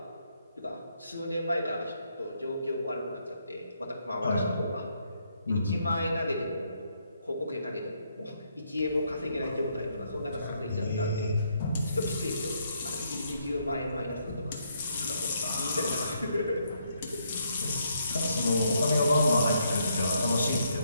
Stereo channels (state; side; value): inverted; both; correlation -0.74